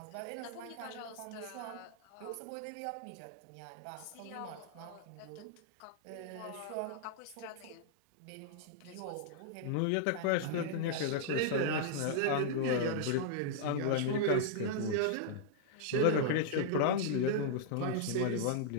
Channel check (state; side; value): different; both; correlation -0.01